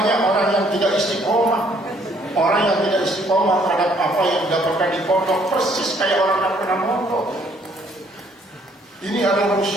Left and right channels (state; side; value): normal; both; correlation 0.64